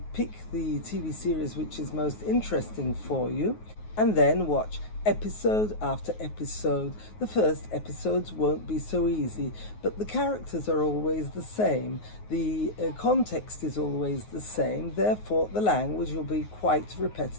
pick the TV series which is most interesting for you and then watch episode after episode. The first episodes won't be so easy, but the characters are always the same. The context is always the same, therefore the language will be quite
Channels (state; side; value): late; right; 9.4 ms